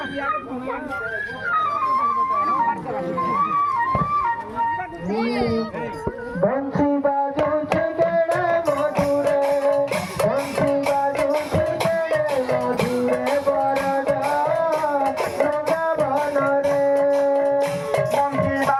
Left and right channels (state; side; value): identical; both; correlation 1.00